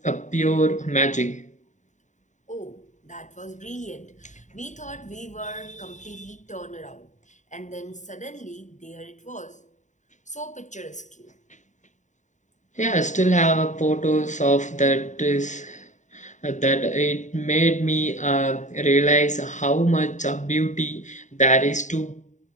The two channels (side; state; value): right; late; 0.35 ms